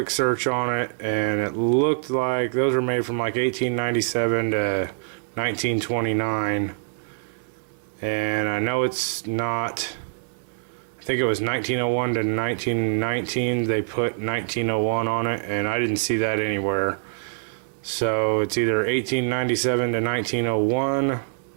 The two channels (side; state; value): left; silent; 62 dB below the other